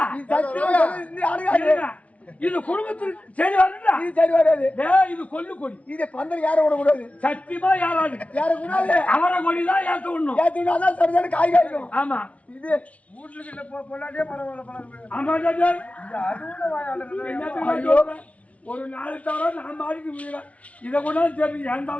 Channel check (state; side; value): late; right; 0.065 ms